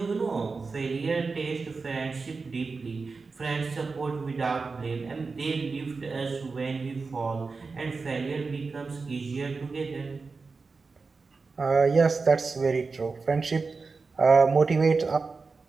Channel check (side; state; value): left; quieter; 4.3 dB